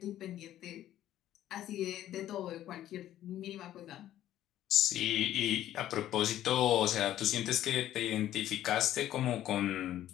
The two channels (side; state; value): right; quieter; 12.6 dB